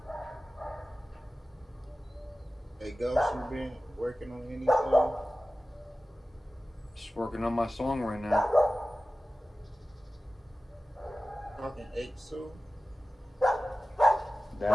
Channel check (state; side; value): normal; both; correlation 0.96